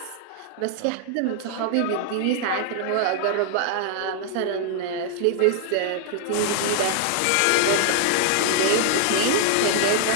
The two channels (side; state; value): both; different; correlation -0.01